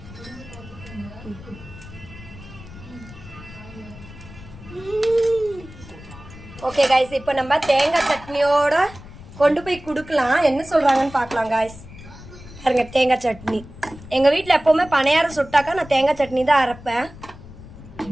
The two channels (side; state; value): left; noise; rumble, 17 dB below the sound